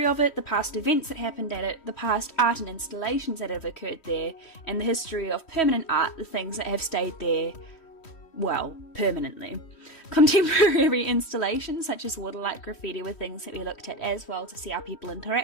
of it, the past events that happened at it, the past art and installations that have occurred there, and the history of permanent art, the things that have stayed there, well, permanently. Contemporary installations such as waterlight graffiti were things that we looked at as well to see how people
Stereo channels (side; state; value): right; late; 3.1 ms